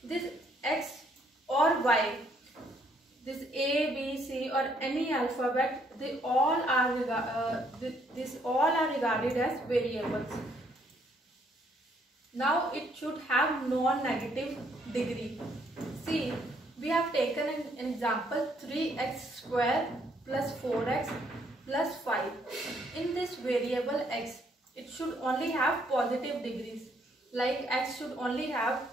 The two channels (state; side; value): normal; both; correlation 0.68